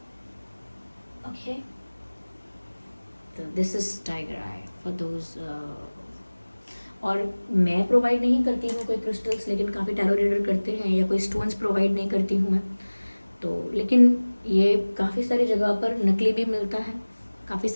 Okay, तो this is tiger eye for those. और मैं प्रोवाइड नहीं करती हूँ कोई क्रिस्टल्स, लेकिन काफ़ी टैरो रीडर करते हैं, या कोई स्टोन्स प्रोवाइड नहीं करती हूँ मैं तो। लेकिन ये काफ़ी सारी जगह पर नकली भी मिलता है, काफ़ी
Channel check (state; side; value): inverted; both; correlation -1.00